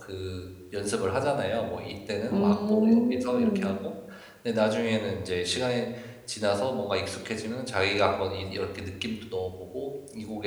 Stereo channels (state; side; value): identical; both; correlation 1.00